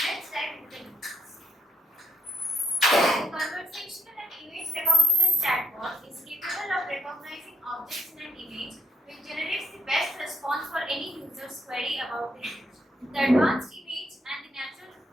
let's dive into the details. The conversational and image recognition chatbot is capable of recognizing objects in an image which generates the best response for any user's query about the image. The advanced image and the natural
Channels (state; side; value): normal; both; correlation 0.74